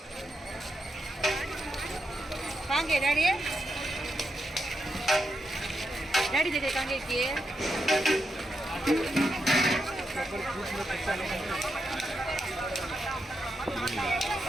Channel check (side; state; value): both; normal; correlation 0.85